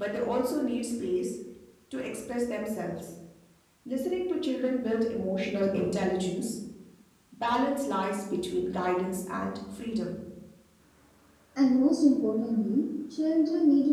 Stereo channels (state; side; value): identical; both; correlation 1.00